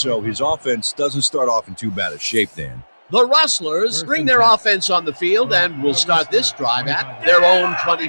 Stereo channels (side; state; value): both; inverted; correlation -1.00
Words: his offense doesn't start off in too bad a shape, Dan. The Rustlers bring their offense on the field and will start this drive at their own